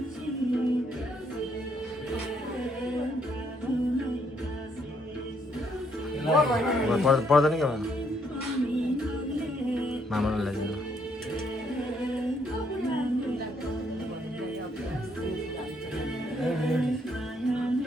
पर्दैन क्या मामालाई ल्याइदिनु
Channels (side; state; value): both; normal; correlation 0.71